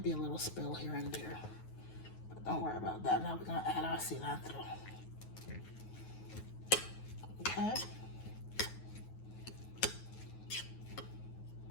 be a little spill here and there, but don't worry about that. Now we're gonna add our cilantro. Okay.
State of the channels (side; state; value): right; late; 9.4 ms